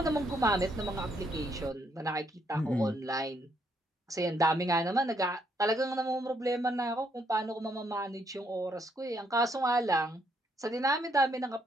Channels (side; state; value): both; normal; correlation 0.73